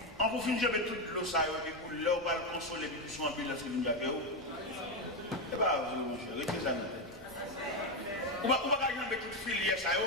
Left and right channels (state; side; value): normal; both; correlation 0.09